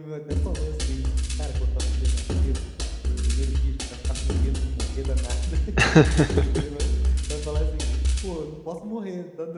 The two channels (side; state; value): both; identical; correlation 1.00